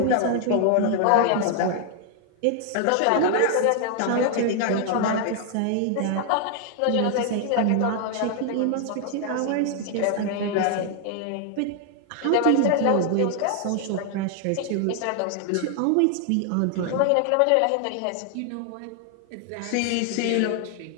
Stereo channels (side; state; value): both; different; correlation 0.00